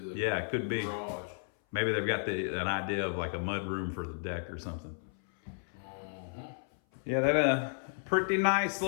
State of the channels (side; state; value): right; silent; 56 dB below the other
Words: the it could be. garage. Maybe they've got an idea of like a mud room for the deck or something. Yeah, that pretty nice